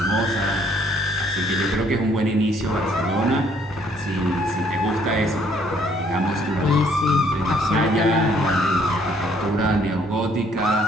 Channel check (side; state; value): both; normal; correlation 0.64